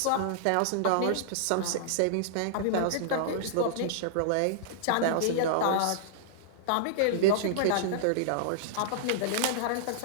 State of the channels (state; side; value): different; both; correlation -0.02